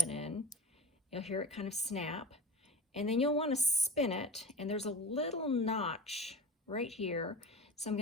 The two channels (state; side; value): normal; both; correlation 0.31